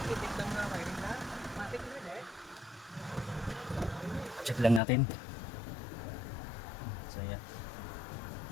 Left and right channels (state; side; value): drops out; right; at 4.8 s